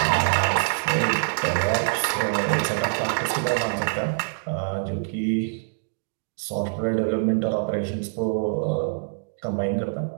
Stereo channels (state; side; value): silent; left; digital silence